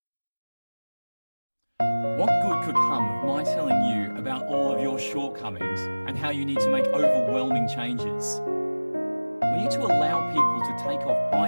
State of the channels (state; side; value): inverted; both; correlation -1.00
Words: What good could come of my telling you about all of your shortcomings and how you need to make overwhelming changes? We need to allow people to take off